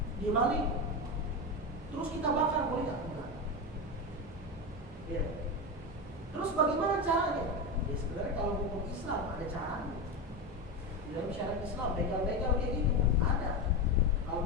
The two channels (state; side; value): normal; both; correlation 0.17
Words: Dia maling. Terus kita bakar, boleh nggak? Enggak. Terus bagaimana caranya? Ya sebenarnya kalau hukum Islam ada caranya. Di dalam syariat Islam begal-begal kayak gitu ada.